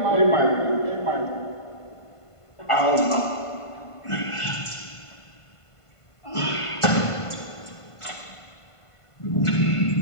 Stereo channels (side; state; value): right; late; 1.5 ms